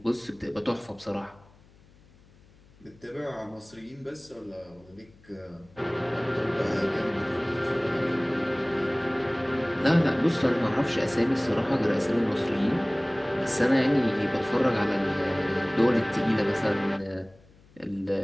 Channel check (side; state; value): left; noise; hum, 27 dB below the sound